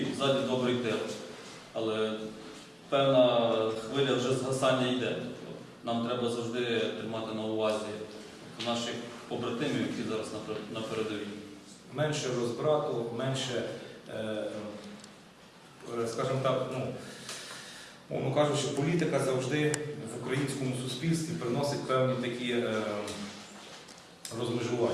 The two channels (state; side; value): identical; both; correlation 1.00